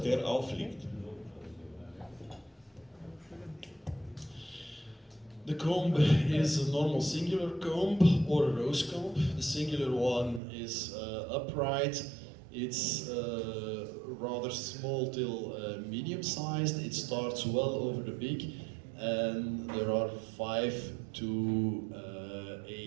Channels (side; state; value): left; drops out; at 10.4 s